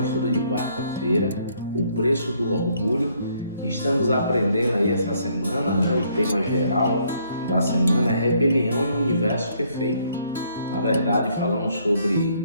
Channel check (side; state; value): both; inverted; correlation -0.68